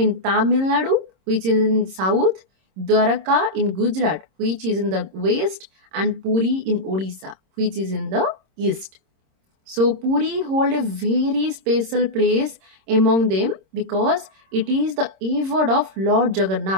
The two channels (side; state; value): left; late; 26 ms